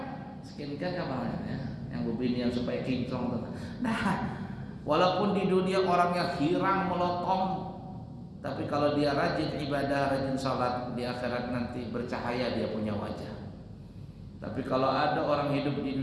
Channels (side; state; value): both; identical; correlation 1.00